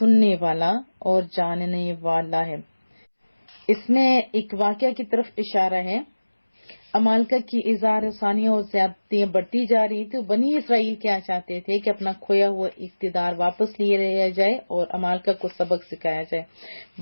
والا اور جاننے والا ہے۔ اس میں ایک واقعہ کی طرف اشارہ ہے۔ امالکہ کی اظہار ثانیہ اور زیادتیاں بڑھتی جا رہی تھی۔ بنی اسرائیل کیا چاہتے تھے کہ اپنا کھویا ہوا اقتدار واپس لیے رہا جائے اور امالکہ کو سبق سکھایا جائے۔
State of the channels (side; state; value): both; inverted; correlation -1.00